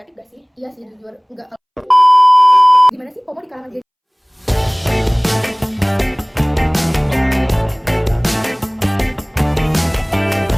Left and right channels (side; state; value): both; identical; correlation 1.00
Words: negatif gak sih? Iya sih, jujur enggak. Gimana sih FOMO di kalangan Gen Z?